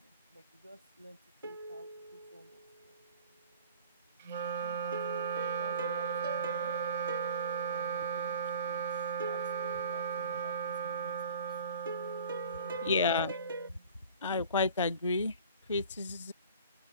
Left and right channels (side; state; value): both; inverted; correlation -0.45